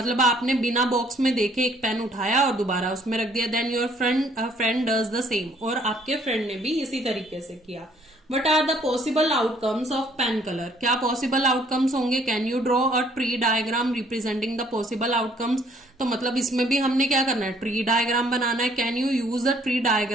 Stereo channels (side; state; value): both; normal; correlation 0.62